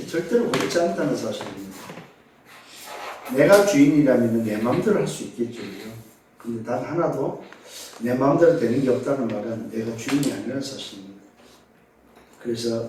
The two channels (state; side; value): identical; both; correlation 1.00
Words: 절대로 그렇지 않다는 사실입니다. 내가 주인이라면 내 마음대로 할 수 있겠죠. 근데 단 하나도 내 마음대로 되는 게 없다는 말은 내가 주인이 아니라는 사실입니다. 그래서